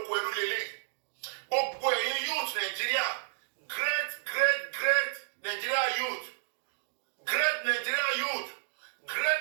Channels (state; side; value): silent; left; digital silence